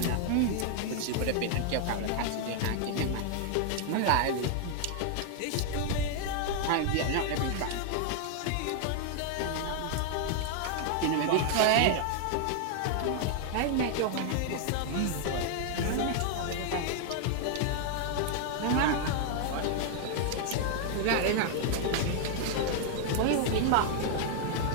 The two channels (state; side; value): different; both; correlation 0.00